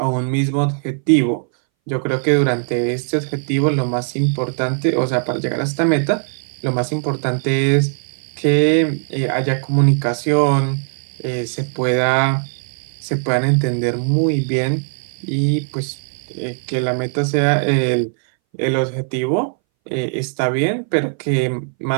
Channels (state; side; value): silent; left; 63 dB below the other